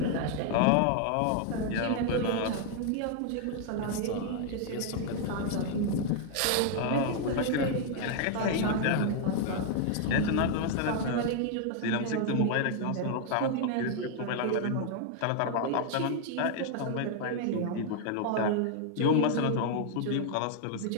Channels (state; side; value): different; both; correlation 0.00